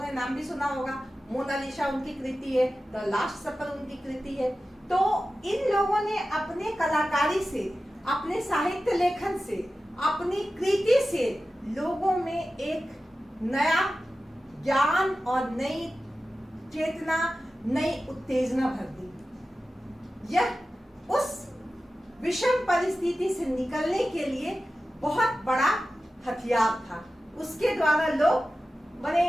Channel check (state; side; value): normal; both; correlation 0.94